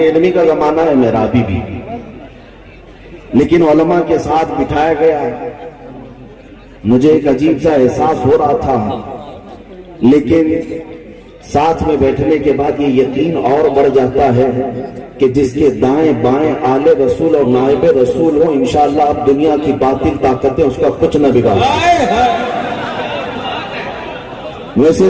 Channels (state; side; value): identical; both; correlation 1.00